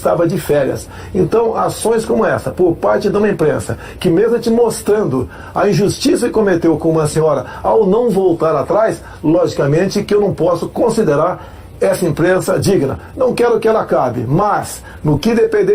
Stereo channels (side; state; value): both; identical; correlation 1.00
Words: de férias. Então, ações como essa, por parte de uma imprensa, que mesmo te mostrando a injustiça que cometeu com uma senhora ao não voltar atrás, logicamente que eu não posso considerar essa imprensa digna. Não quero que ela acabe, mas, no que